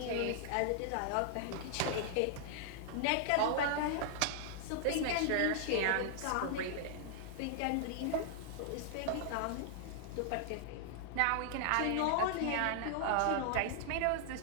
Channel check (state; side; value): different; both; correlation -0.01